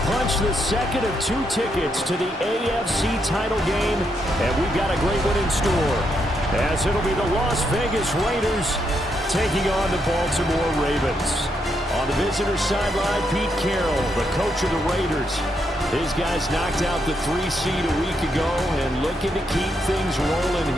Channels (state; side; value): normal; both; correlation 0.79